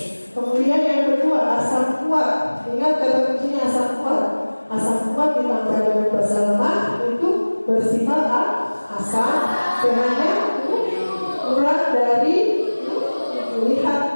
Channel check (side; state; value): both; inverted; correlation -1.00